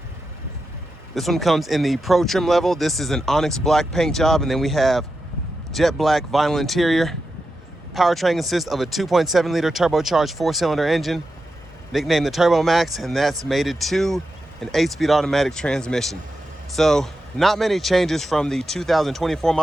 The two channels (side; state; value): both; normal; correlation 0.89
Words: This one comes in the Pro trim level. This is an onyx black paint job, and then we have jet black vinyl interior. Powertrain consists of a 2.7 liter turbocharged 4-cylinder engine, nicknamed the Turbo Max, and that's mated to an 8-speed automatic transmission. So not many changes from the 2024